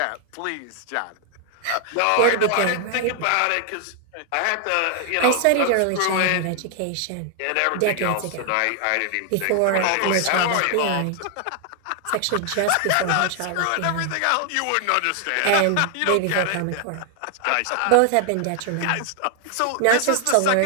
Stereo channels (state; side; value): different; both; correlation 0.00